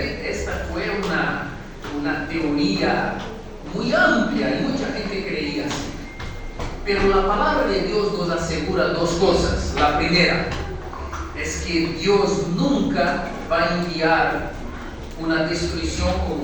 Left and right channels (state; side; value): identical; both; correlation 1.00